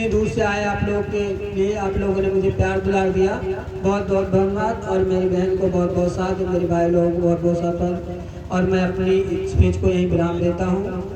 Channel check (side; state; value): both; identical; correlation 1.00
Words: दूर से आए आप लोगों के लिए, आप लोगों ने मुझे प्यार दुलार दिया, बहुत बहुत धन्यवाद। और मेरी बहन को बहुत बहुत साथ, मेरे भाई लोगों को बहुत बहुत साथ। और मैं अपनी स्पीच को यहीं विराम देता हूँ।